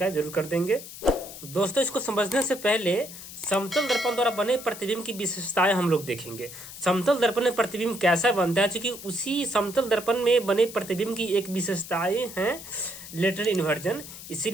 जरूर कर देंगे। दोस्तों, इसको समझने से पहले समतल दर्पण द्वारा बने प्रतिबिंब की विशेषताएं हम लोग देखेंगे। समतल दर्पण में प्रतिबिंब कैसा बनता है, क्योंकि उसी समतल दर्पण में बने प्रतिबिंब की एक विशेषताएं हैं लेटरल इन्वर्जन।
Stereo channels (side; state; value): left; noise; hiss, 13 dB below the sound